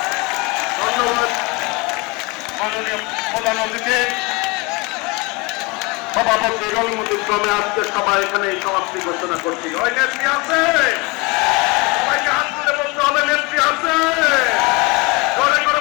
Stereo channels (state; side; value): quieter; right; 26.7 dB